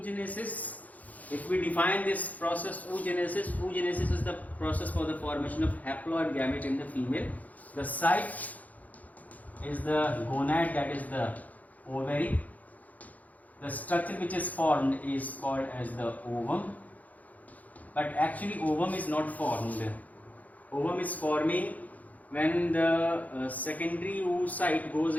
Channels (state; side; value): late; right; 0.077 ms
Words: If we define this process, oogenesis is the process for the formation of haploid gamete in the female. The site is the gonad, that is the ovary. The structure which is formed is called as the ovum. But actually ovum is not formed. Ovum is forming when the secondary oocyte goes